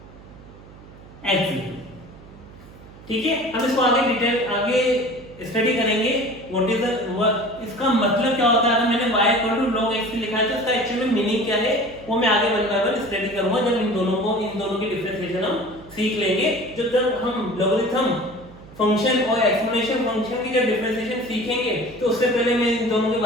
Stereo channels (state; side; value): noise; right; hum, 20 dB below the sound